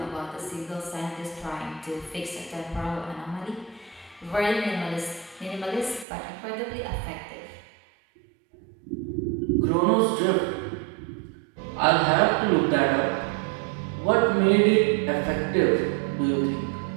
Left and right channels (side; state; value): left; drops out; at 6.1 s